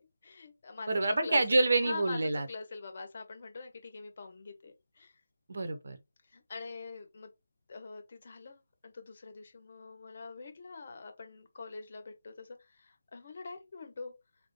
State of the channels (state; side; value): inverted; both; correlation -0.92